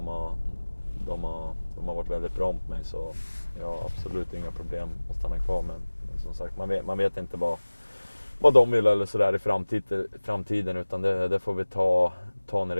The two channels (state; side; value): inverted; both; correlation -1.00